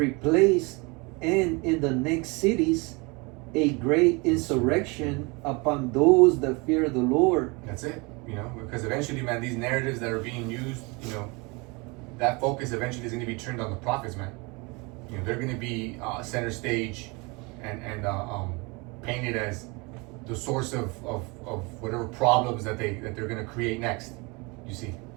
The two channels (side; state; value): left; quieter; 27.9 dB